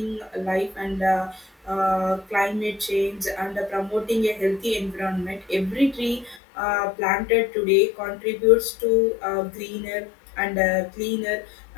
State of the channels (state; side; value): drops out; right; at 6.4 s